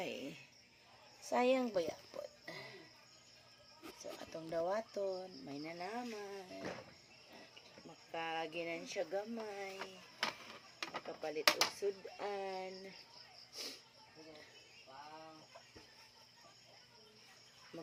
sayang bayapon. So atong dawaton may nanaman. Makaginan siya gamay. Makapalit og sudan.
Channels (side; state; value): both; identical; correlation 1.00